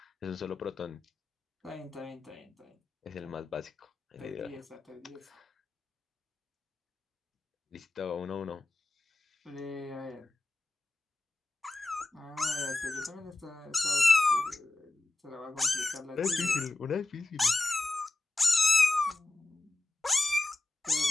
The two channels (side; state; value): right; quieter; 3.0 dB